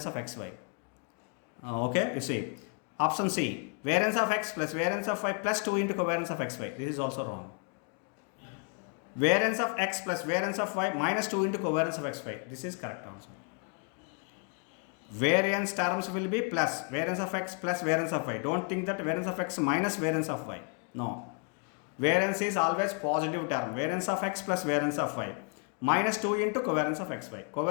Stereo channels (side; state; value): right; quieter; 39.7 dB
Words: of xy. Okay, you see option C, variance of x plus variance of y plus 2 into covariance of xy. This is also wrong. Variance of x plus variance of y minus 2 into covariance of xy. This is correct answer. Variance terms will be plus variance of x plus variance of y. Don't think that variance of x minus variance of y. No, variance is always positive term. Variance of x plus variance of y minus 2 into covariance of xy.